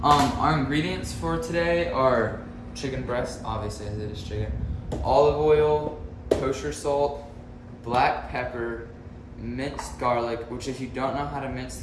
Our ingredients for today are chicken breast, obviously as it is chicken, olive oil, kosher salt, black pepper, minced garlic, which if you don't know how to mince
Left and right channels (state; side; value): identical; both; correlation 1.00